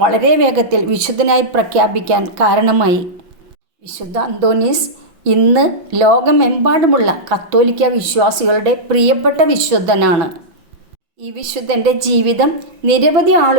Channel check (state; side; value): late; left; 6.1 ms